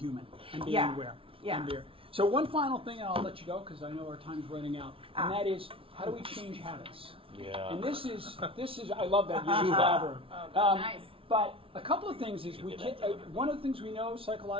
and being aware. Yeah. And so one final thing, and I'll let you go because I know our time's running out, and that is, how do we change habits? Yeah. And this is I love that you elaborate. Nice. But a couple of things is one of the things we know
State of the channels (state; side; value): late; left; 0.26 ms